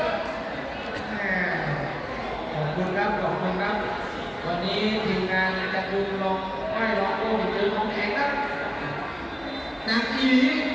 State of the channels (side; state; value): both; identical; correlation 1.00